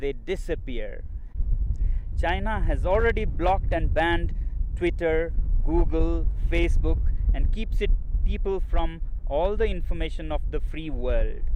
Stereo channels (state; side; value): identical; both; correlation 1.00